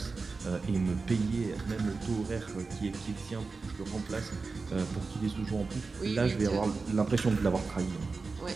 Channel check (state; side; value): quieter; left; 4.2 dB